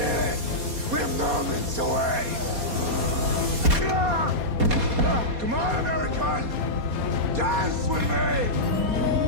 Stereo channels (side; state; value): left; late; 4.2 ms